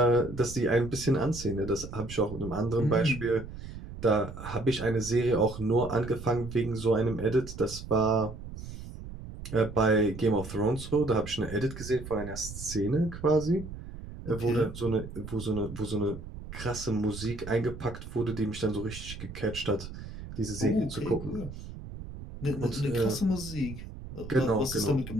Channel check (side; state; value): right; noise; rumble, 11 dB below the sound